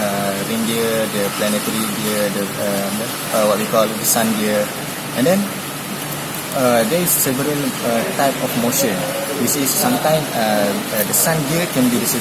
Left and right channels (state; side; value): identical; both; correlation 1.00